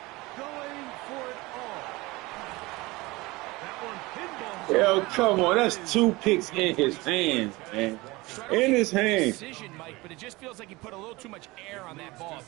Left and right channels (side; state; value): left; quieter; 22.0 dB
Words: going for it all. That one pinball. Yo, come on, that's 2 picks in his hands, man. In his hands. Decision, Mike, but it just feels like he put a little too much air on that ball.